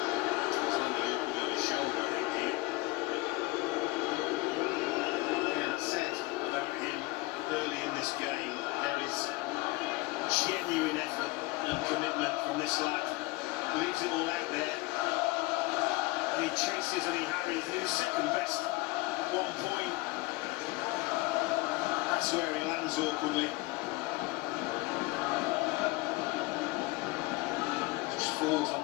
Early in this game, there is genuine effort and commitment from this lad. Leaves it all out there. And he chases and he harries. He was second best at 1 point. That's where he lands awkwardly. Just falls on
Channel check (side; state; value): right; quieter; 21.6 dB